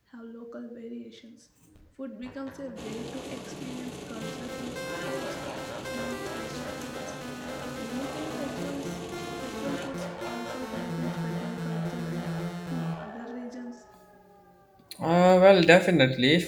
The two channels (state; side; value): identical; both; correlation 1.00